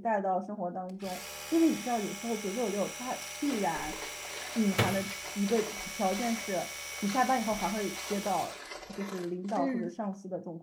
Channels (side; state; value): both; identical; correlation 1.00